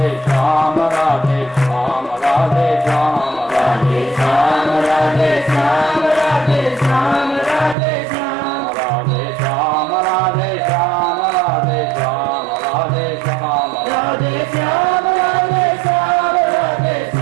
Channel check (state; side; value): drops out; left; at 7.8 s